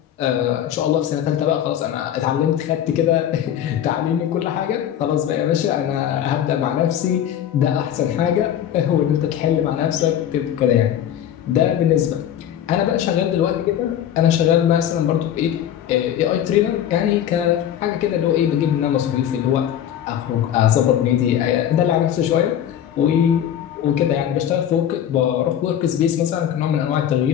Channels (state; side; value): quieter; right; 10.3 dB